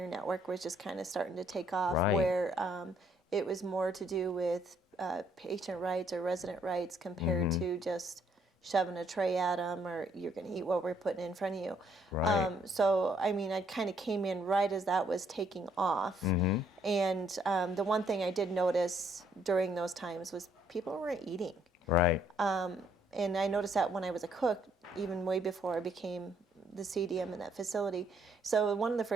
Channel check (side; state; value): both; normal; correlation 0.68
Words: Network was just kind of starting to take off, Right. where it was more to do with patient rights or resident rights compared Mm-hmm. to just shoving a tray at them or you're going to eat what we're putting in front of you. Right. So, I mean, I kind of came in right as that was taking off. Mm-hmm. And the one thing I did notice during those times was people weren't eating. Right. And I noticed that when I was a cook, even way before I became the CDM in that facility. So one of the